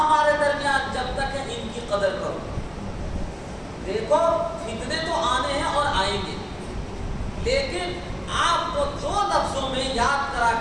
درمیان جب تک ہیں ان کی قدر کرو. دیکھو فتنے تو آنے ہیں اور آئیں گے, لیکن آپ کو دو لفظوں میں یاد کرا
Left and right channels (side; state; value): both; identical; correlation 1.00